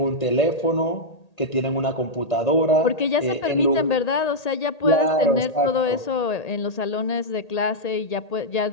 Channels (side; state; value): right; late; 1.8 ms